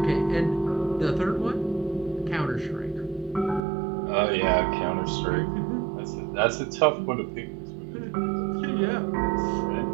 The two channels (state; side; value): drops out; left; at 3.6 s